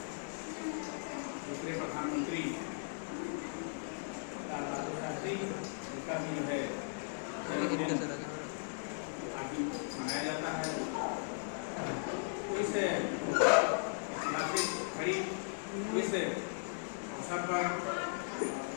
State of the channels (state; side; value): silent; right; digital silence